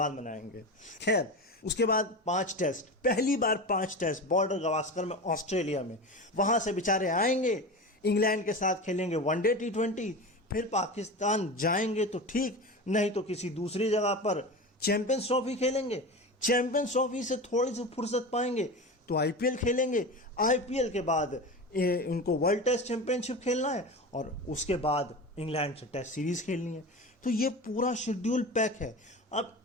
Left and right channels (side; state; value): both; normal; correlation 0.28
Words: मनाएंगे। खैर, उसके बाद 5 टेस्ट, पहली बार 5 टेस्ट बॉर्डर गवास्कर में, ऑस्ट्रेलिया में। वहां से बेचारे आएंगे, इंग्लैंड के सात खेलेंगे वनडे T20, फिर पाकिस्तान जाएंगे तो ठीक, नहीं तो किसी दूसरी जगह पर चैंपियंस ट्रॉफी खेलेंगे। चैंपियंस ट्रॉफी से थोड़ी सी फुर्सत पाएंगे तो IPL खेलेंगे। IPL के बाद उनको वर्ल्ड टेस्ट चैंपियनशिप खेलना है और उसके बाद इंग्लैंड से टेस्ट सीरीज खेलनी है। तो ये पूरा शेड्यूल पैक है। अब